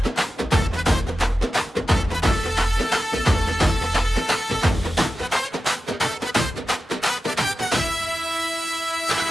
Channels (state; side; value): normal; both; correlation 0.93